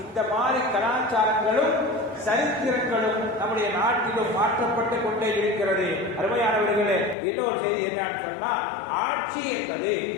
இந்த மாதிரி கலாச்சாரங்களும் சரித்திரங்களும் நம்முடைய நாட்டிலும் மாற்றப்பட்டு கொண்டே இருக்கிறது. அருமையானவர்களே, இன்னொரு செய்தி என்னன்னு சொன்னா, ஆட்சி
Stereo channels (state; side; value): drops out; right; at 7.2 s